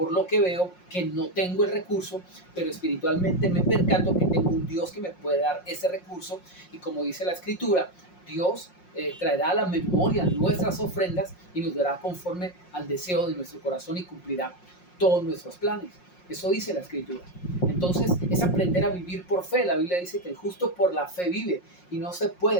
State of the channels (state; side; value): late; right; 5.6 ms